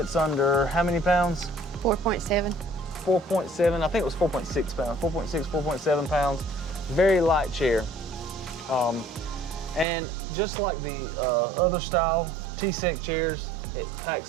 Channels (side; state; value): left; drops out; at 9.9 s